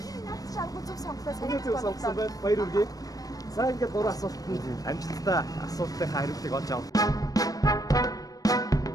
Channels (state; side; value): late; right; 0.18 ms